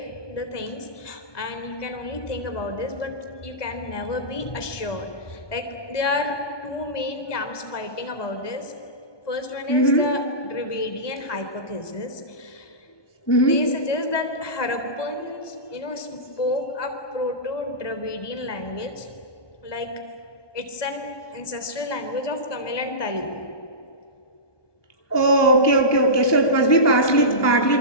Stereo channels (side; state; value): right; late; 1.2 ms